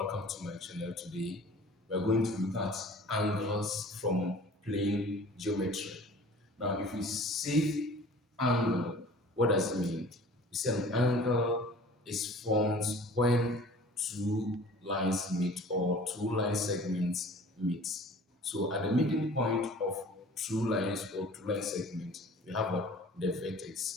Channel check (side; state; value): both; normal; correlation 0.46